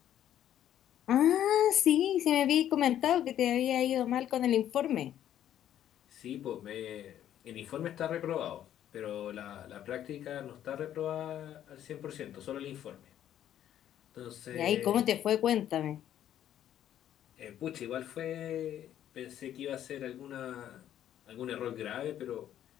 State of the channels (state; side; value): quieter; right; 11.1 dB